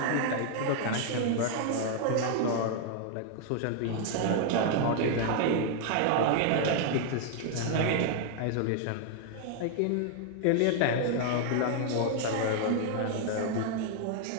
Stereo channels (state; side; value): different; both; correlation 0.00